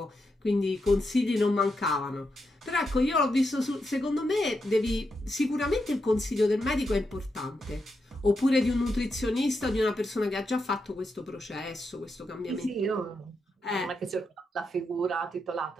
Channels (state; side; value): normal; both; correlation 0.85